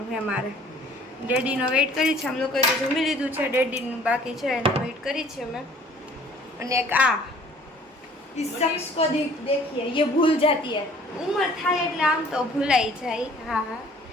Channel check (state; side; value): normal; both; correlation 0.53